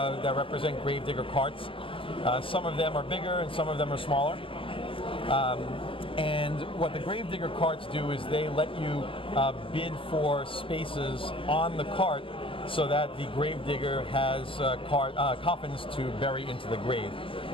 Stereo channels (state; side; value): late; right; 0.25 ms